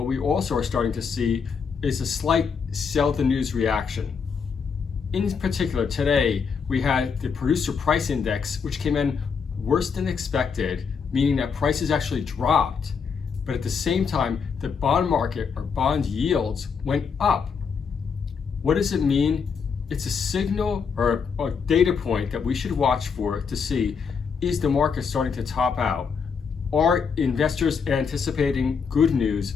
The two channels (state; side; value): quieter; right; 6.0 dB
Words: we also are starting to see is a slight sell the news reaction. In particular, today, we had the producer price index, which came in worse than expected, meaning that prices actually dropped. But at the same time, the bond market or bond yields went up. What does it mean? It's a signal or a data point that we should watch for to see, is the market starting to top out? Are investors anticipating good news